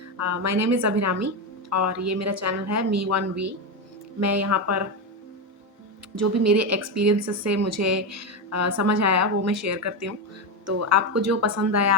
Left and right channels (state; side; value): normal; both; correlation 0.12